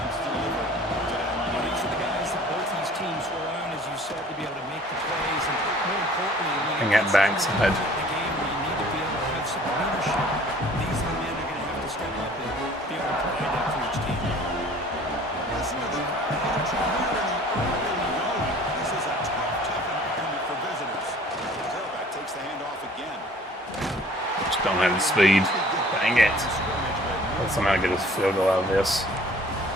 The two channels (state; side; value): normal; both; correlation 0.51